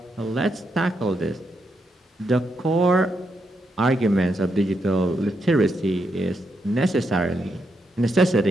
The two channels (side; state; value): both; normal; correlation 0.81